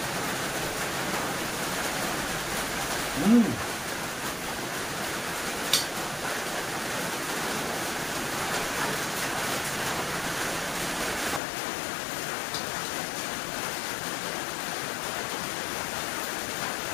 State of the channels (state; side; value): drops out; right; at 11.4 s